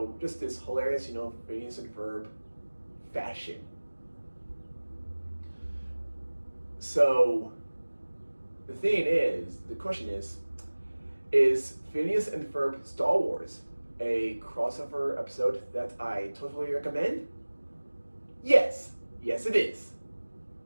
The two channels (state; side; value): inverted; both; correlation -1.00